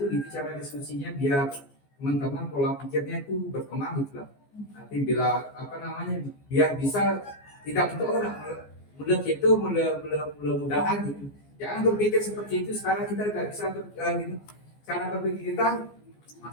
gitu cara diskusinya, biar teman-teman pola pikirnya itu berkembang gitu lah. Nanti bila apa namanya, biar bisa tidak untuk orang mudah-mudahan gitu. Jangan berpikir seperti itu. Sekarang kita nggak bisa gitu. Cara berpikir kita,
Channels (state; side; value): late; right; 14 ms